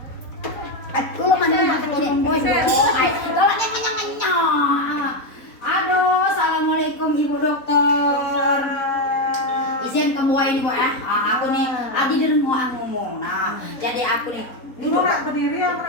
Lu mana makan ini? Oh, kalau nyang. Aduh, assalamualaikum ibu dokter. izin kamu ini Bu aku nih adi dereng mau ngomong. Nah, jadi aku nih Dulu nak berdiri apa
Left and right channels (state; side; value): late; right; 4.0 ms